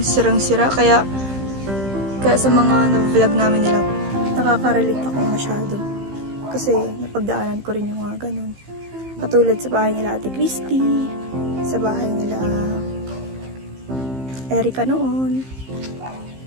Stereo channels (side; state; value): left; late; 15 ms